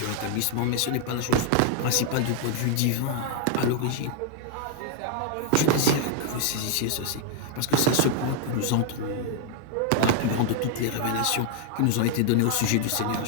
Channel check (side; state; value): both; different; correlation 0.00